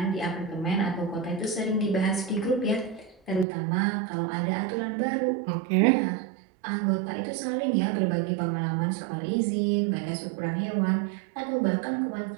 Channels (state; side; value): drops out; left; at 3.5 s